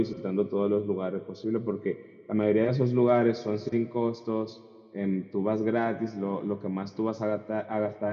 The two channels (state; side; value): identical; both; correlation 1.00